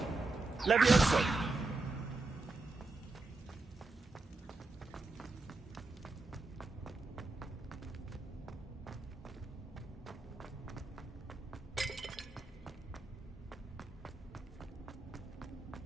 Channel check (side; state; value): left; quieter; 3.3 dB